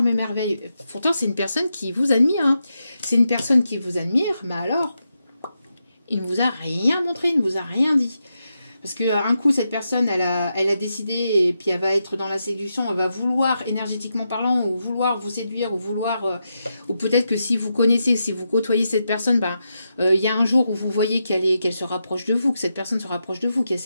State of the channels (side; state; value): both; inverted; correlation -0.86